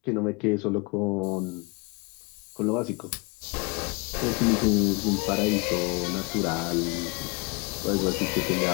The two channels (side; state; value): right; quieter; 29.3 dB